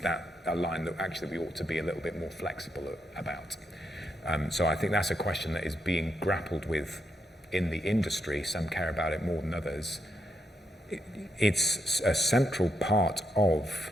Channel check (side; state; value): both; normal; correlation 0.81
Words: a line that actually we ought to be a little bit more flexible about? So I think that's a question that is being grappled with in the industry. Some care about it more than others. It's a central part of